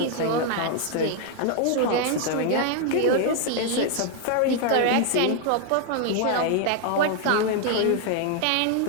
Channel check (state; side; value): different; both; correlation 0.00